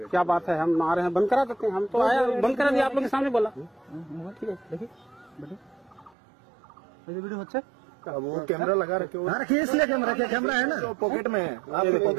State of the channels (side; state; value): left; drops out; at 6.2 s